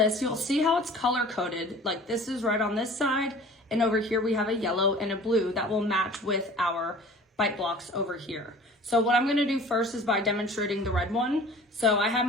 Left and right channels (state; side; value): normal; both; correlation 0.45